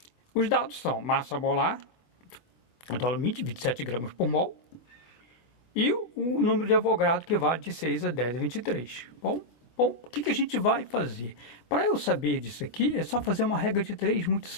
Os dados são massa molar do alumínio, 27 gramas por mol. E o número de Avogadro, que vale de 6 a 10 a 23. Bom, o que a gente vai fazer? Para eu saber disso aqui, é só fazer uma regra de 3 muito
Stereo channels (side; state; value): right; late; 25 ms